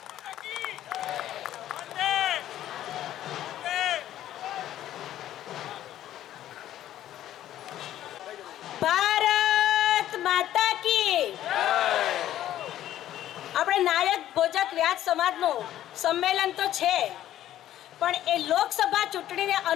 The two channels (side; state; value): right; quieter; 12.5 dB